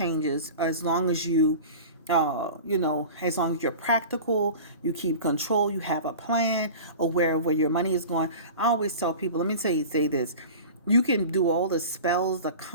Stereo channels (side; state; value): both; inverted; correlation -0.36